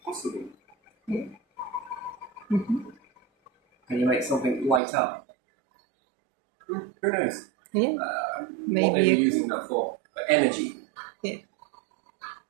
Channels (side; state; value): left; drops out; at 4.8 s